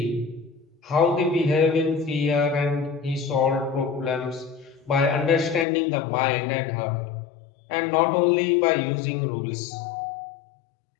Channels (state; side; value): drops out; right; at 5.7 s